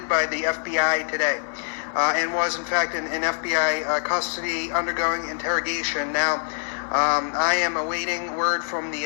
by the FBI today and was in fact in FBI custody undergoing interrogation. Now, I am awaiting word from the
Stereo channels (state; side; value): silent; right; 62 dB below the other